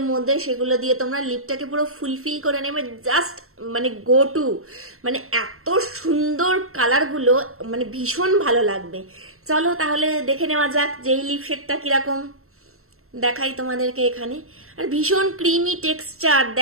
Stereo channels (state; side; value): late; left; 0.63 ms